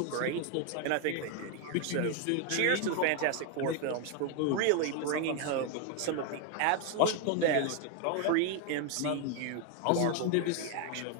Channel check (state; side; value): different; both; correlation 0.01